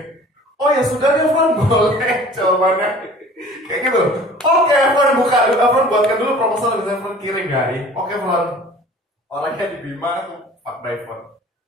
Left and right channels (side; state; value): both; normal; correlation 0.47